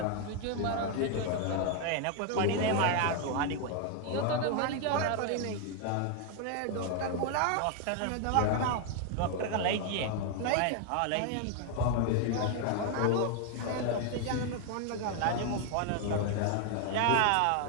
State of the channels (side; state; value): both; different; correlation 0.01